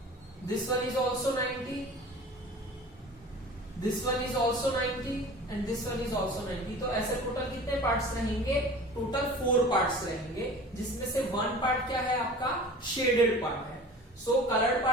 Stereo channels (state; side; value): normal; both; correlation 0.41